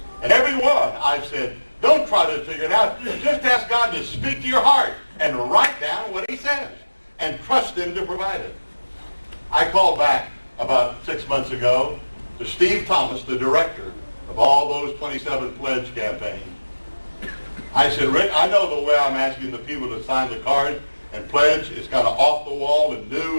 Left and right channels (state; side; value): inverted; both; correlation -1.00